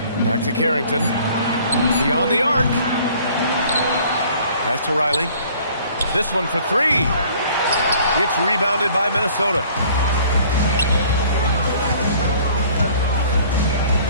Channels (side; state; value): both; inverted; correlation -0.53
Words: Back to Carrington. Beyond the arc. Pass to Riley. This one for 3. It's rebounded by Minnesota.